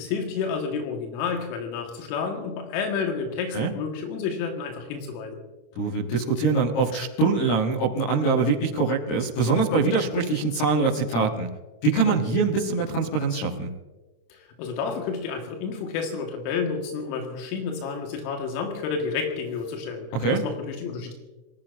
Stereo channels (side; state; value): right; late; 26 ms